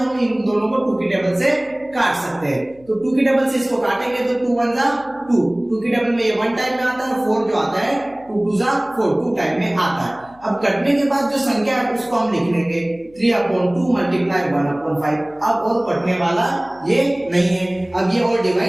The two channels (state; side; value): noise; left; hum, 28 dB below the sound